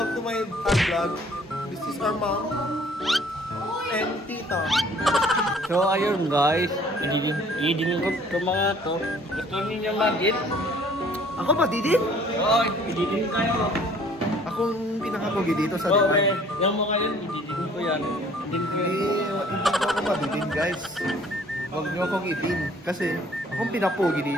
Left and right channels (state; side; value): normal; both; correlation 0.55